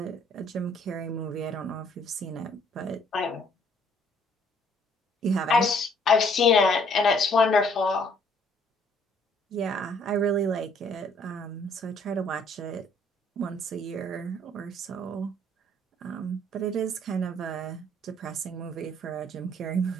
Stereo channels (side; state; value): both; normal; correlation 0.62